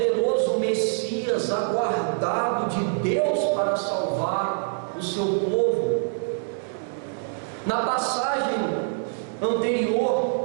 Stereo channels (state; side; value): silent; left; digital silence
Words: Messias aguardado de Deus para salvar o seu povo. Na passagem